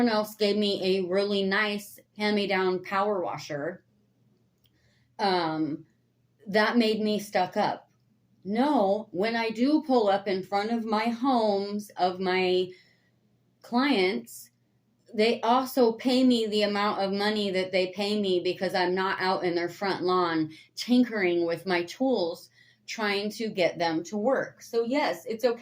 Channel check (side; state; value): both; identical; correlation 1.00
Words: else gave me a really nice hand-me-down power washer, that made me stuck up. No, when I do pull up in front of my homes of my clients, they also pay me the amount of money that they pay me because I'm not out in their front lawn tinkering with my tools trying to get them to work. So yes, it's